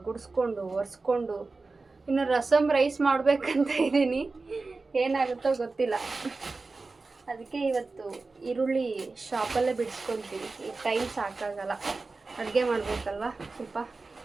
ಗುಡಿಸ್ಕೊಂಡು ಒರೆಸ್ಕೊಂಡು ಇನ್ನು ರಸಮ್ ರೈಸ್ ಮಾಡಬೇಕಂತ ಇದ್ದೀನಿ. ಏನಾಗುತ್ತೋ ಗೊತ್ತಿಲ್ಲ. ಅದಕ್ಕೆ ಇವತ್ತು ಈರುಳ್ಳಿ ಶಾಪಲ್ಲೇ ಬಿಡಿಸ್ಕೊತೀನಿ. ಈಗ ಟೈಮ್ ಸಾಕಾಗಲ್ಲ, ಅಡುಗೆ ಮಾಡಬೇಕಲ್ವ. ಸ್ವಲ್ಪ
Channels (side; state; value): left; quieter; 3.8 dB